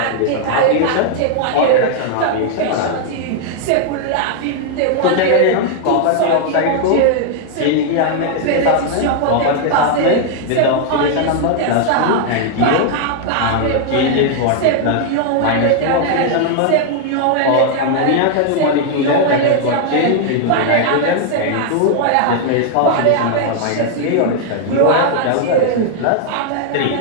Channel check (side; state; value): both; different; correlation 0.00